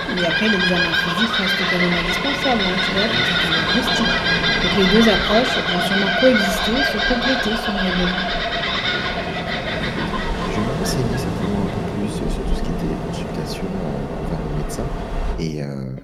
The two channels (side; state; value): both; identical; correlation 1.00